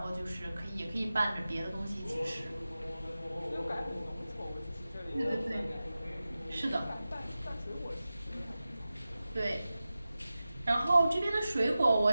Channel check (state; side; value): inverted; both; correlation -0.95